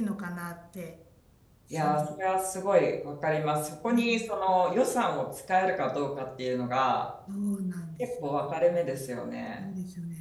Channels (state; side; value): identical; both; correlation 1.00